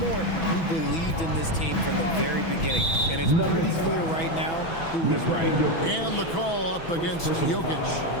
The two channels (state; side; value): late; right; 6.1 ms